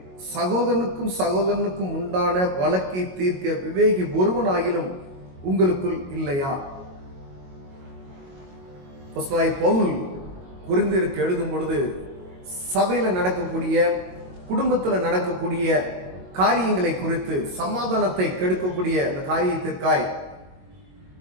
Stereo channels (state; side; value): late; left; 22 ms